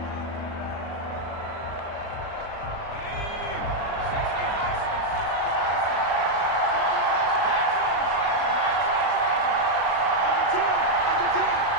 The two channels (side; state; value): right; late; 37 ms